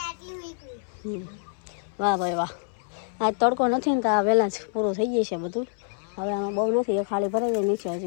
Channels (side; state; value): right; silent; 60 dB below the other